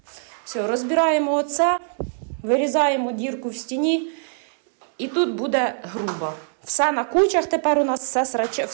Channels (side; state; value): left; silent; 64 dB below the other